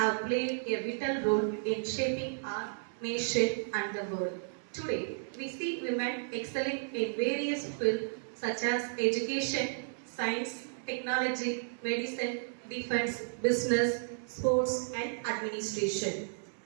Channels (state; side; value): silent; left; digital silence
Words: played a vital role in shaping our nation and the world. Today, we see women excelling in various fields such as education, science, technology, medicine, defense, business, sports, and administration.